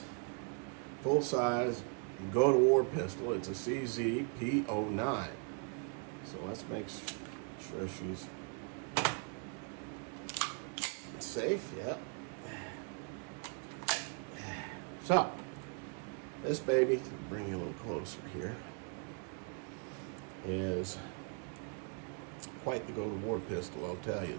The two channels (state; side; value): quieter; left; 38.1 dB